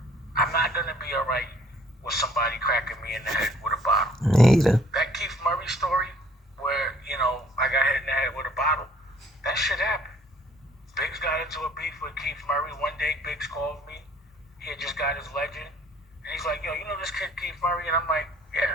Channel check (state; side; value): normal; both; correlation 0.59